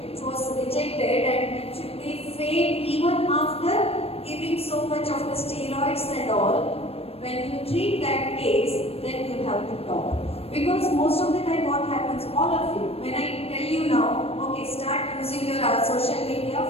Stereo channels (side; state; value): right; late; 0.28 ms